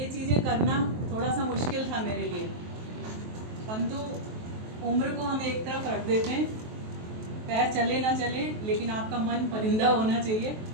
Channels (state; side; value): late; left; 23 ms